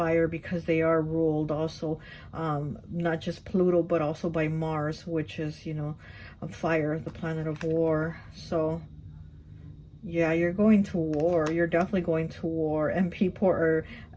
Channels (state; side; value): identical; both; correlation 1.00